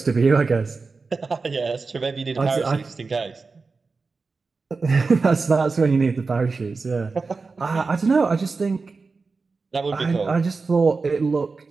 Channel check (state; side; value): quieter; left; 4.3 dB